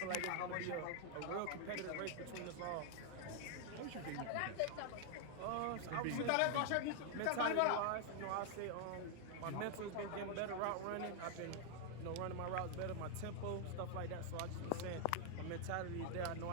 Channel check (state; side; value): different; both; correlation 0.00